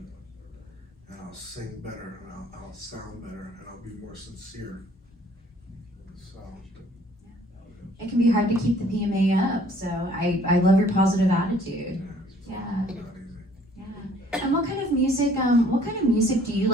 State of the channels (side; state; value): both; normal; correlation 0.58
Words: And I'll sing better, and I'll sound better, and I'll be more sincere. So. It can be hard to keep the PMA up, so I love your positive attitude. Yeah. Not easy. Yeah. And what kind of music do you